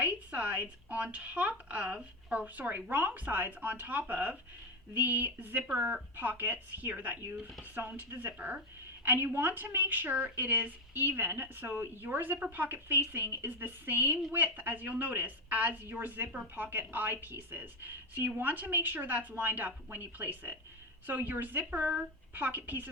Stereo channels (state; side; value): normal; both; correlation 0.11